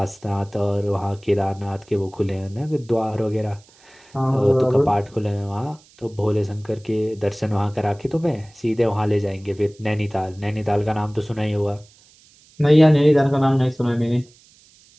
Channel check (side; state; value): right; noise; hiss, 28 dB below the sound